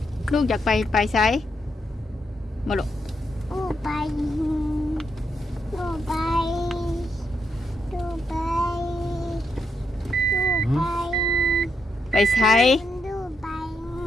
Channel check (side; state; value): both; normal; correlation 0.80